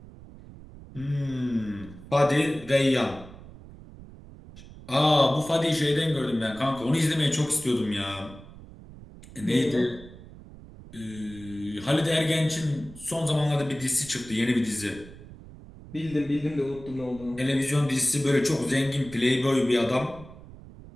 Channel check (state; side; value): noise; right; rumble, 18 dB below the sound